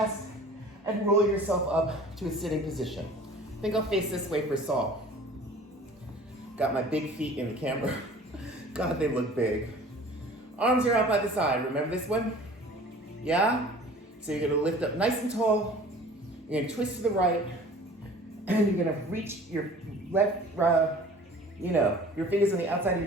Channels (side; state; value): both; normal; correlation 0.46